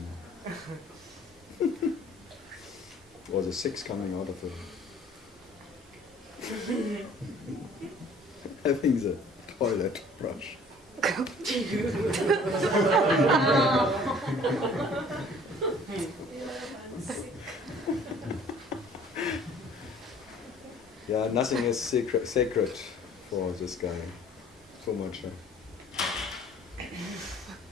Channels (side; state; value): both; normal; correlation 0.52